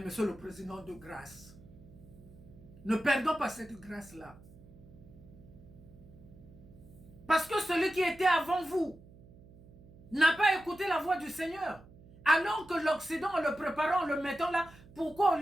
le Président, de grâce, ne perdons pas cette grâce-là. Parce que celui qui était avant vous n'a pas écouté la voix du Seigneur. Alors que l'Occident, en le préparant, en le mettant là, pourquoi au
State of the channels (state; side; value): noise; right; hum, 22 dB below the sound